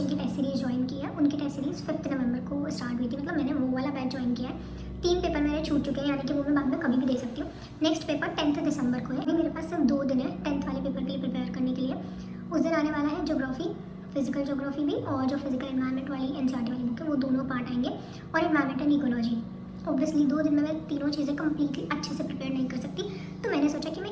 की टेस्ट सीरीज़ ज्वाइन की है। उनकी टेस्ट सीरीज़ 5 नवंबर को स्टार्ट हुई थी। मतलब मैंने वो वाला बैच ज्वाइन किया है। 3 पेपर मेरे छूट चुके हैं, यानी कि वो मैं बाद में कभी भी दे सकती हूँ। नेक्स्ट पेपर 10 दिसंबर को है। अभी मेरे पास सिर्फ 2 दिन है 10th वाले पेपर के लिए प्रिपेयर करने के लिए। उस दिन आने वाला है ज्योग्राफी, फिजिकल ज्योग्राफी भी, और जो फिजिकल एनवायरनमेंट वाली एनसीईआरटी वाली बुक है वो दोनों पार्ट आएंगे, और एनवायरमेंट एंड इकोलॉजी। ऑब्वियसली 2 दिन में मैं तीनों चीज़ें कम्प्लीटली अच्छे से प्रिपेयर नहीं कर सकती, तो मैंने सोचा कि मैं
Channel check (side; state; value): both; identical; correlation 1.00